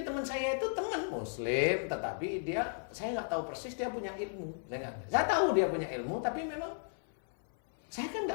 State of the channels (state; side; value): silent; right; 55 dB below the other